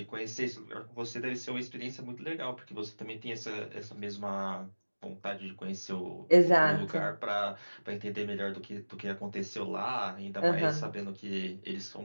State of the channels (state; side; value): inverted; both; correlation -1.00